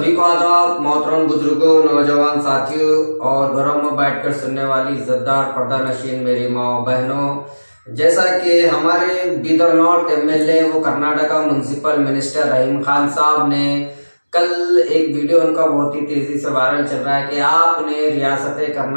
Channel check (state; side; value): inverted; both; correlation -1.00